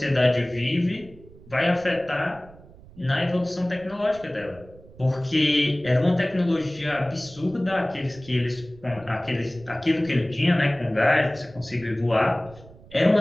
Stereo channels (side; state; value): right; noise; rumble, 22 dB below the sound